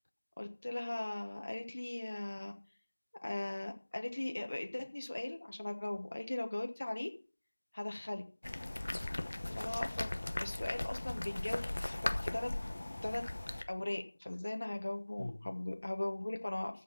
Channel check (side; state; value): both; inverted; correlation -1.00